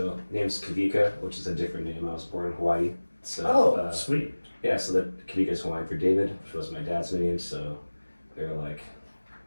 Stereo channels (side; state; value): both; inverted; correlation -1.00